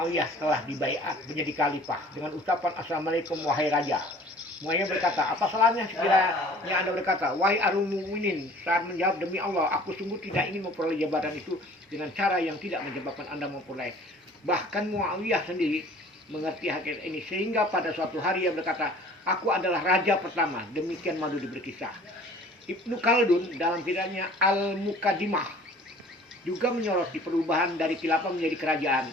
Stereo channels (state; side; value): normal; both; correlation 0.49